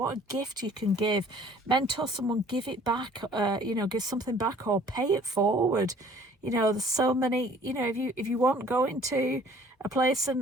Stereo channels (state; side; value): normal; both; correlation 0.54